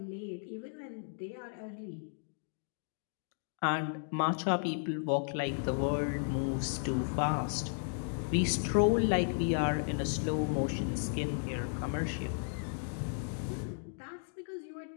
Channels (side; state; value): right; silent; digital silence